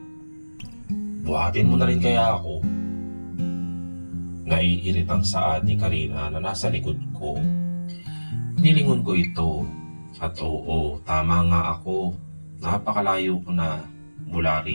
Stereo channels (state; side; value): inverted; both; correlation -1.00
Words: Buhatin mo na rin kaya ako. Naiiritang saad ni Karina na nasa likod ko. Nilingon ko ito. At oo, tama nga ako. Napakalayo ko na mula